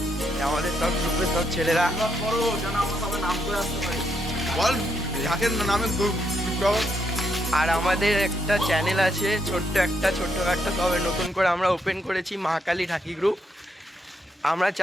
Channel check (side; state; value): both; normal; correlation 0.78